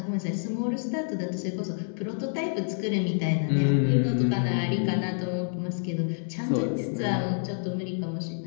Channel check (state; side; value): silent; right; digital silence